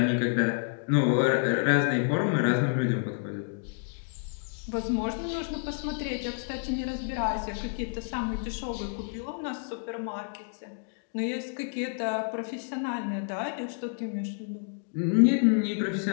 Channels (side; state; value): right; silent; 58 dB below the other